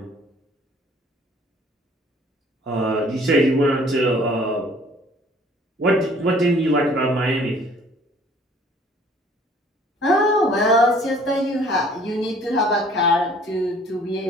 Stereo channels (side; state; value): both; normal; correlation 0.55